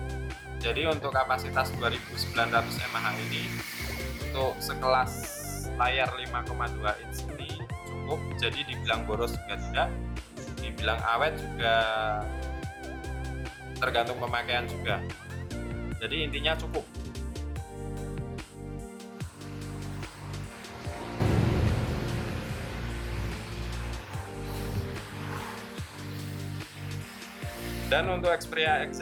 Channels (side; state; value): both; identical; correlation 1.00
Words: Jadi untuk kapasitas 2900 mAh ini untuk sekelas layar 5,2 inch ini cukup. Jadi dibilang boros juga tidak, dibilang awet juga tergantung pemakaian juga. Jadi intinya cukup. Dan untuk Xperia